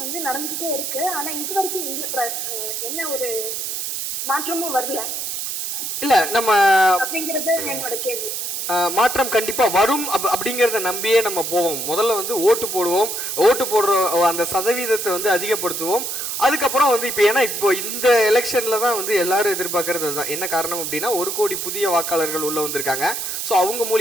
வந்து நடந்துட்டே இருக்கு. ஆனா இதுவரைக்கும் என்ன ஒரு மாற்றமும் வரல. இல்ல நம்ம அப்படிங்கிறது என்னோட கேள்வி. மாற்றம் கண்டிப்பா வரும் அப்படிங்கறத நம்பியே நம்ம போவோம். முதல்ல வந்து ஓட்டு போடுவோம். ஓட்டு போடுற அந்த சதவீதத்தை வந்து அதிகப்படுத்துவோம். அதுக்கப்புறம் வந்து இப்போ இந்த எலெக்ஷன்ல தான் வந்து எல்லாரும் எதிர்பார்க்கறது தான். என்ன காரணம் அப்படின்னா 1 கோடி புதிய வாக்காளர்கள் உள்ள வந்திருக்காங்க. ஸோ அவங்க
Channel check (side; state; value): right; noise; hiss, 4 dB below the sound